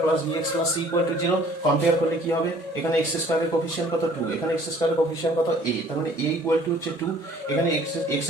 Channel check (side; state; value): both; normal; correlation 0.55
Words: plus bx plus c equal to 0। Compare করলে কি হবে? এখানে x স্কয়ারের কোফিশিয়েন্ট কত 2, এখানে x স্কয়ারের কোফিশিয়েন্ট কত a, তার মানে a ইকুয়াল টু হচ্ছে 2। এখানে x